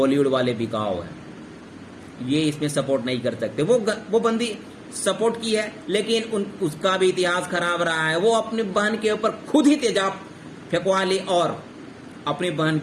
वाले बिकाऊ है, ये इसमें सपोर्ट नहीं कर सकते। वो बंदी सपोर्ट की है, लेकिन उसका भी इतिहास खराब रहा है। वो अपनी बहन के ऊपर खुद ही तेजाब फेंकवा ली और अपनी बहन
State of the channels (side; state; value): both; identical; correlation 1.00